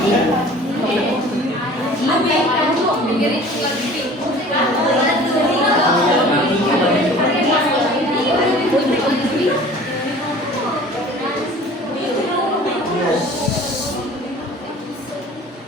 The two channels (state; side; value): normal; both; correlation 0.45